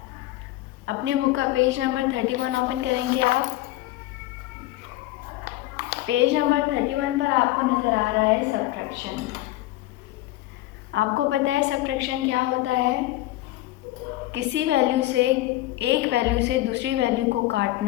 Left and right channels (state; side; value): quieter; right; 16.7 dB